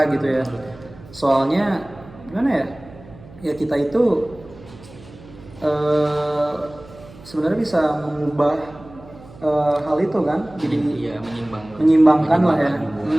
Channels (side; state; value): right; noise; hum, 20 dB below the sound